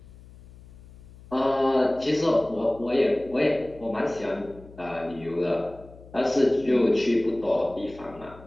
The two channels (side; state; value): left; noise; hum, 21 dB below the sound